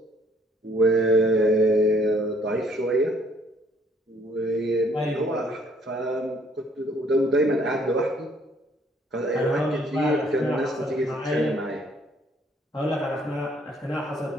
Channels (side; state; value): both; normal; correlation 0.63